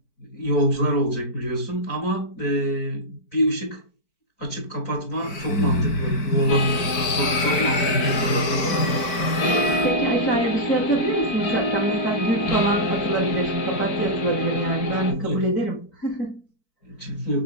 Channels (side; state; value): right; late; 4.5 ms